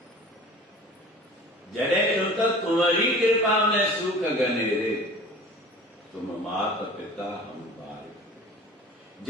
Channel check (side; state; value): both; normal; correlation 0.42